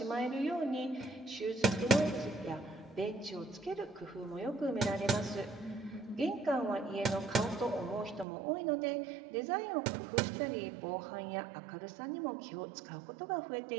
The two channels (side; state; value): left; drops out; at 8.2 s